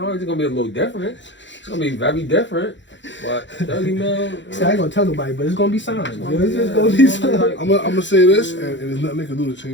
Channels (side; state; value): right; late; 0.54 ms